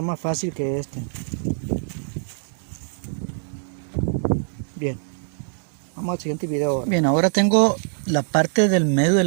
más fácil que este. Bien. Vamos al siguiente video ahora. Bien, ahora tengo la parte del medio de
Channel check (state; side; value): silent; left; digital silence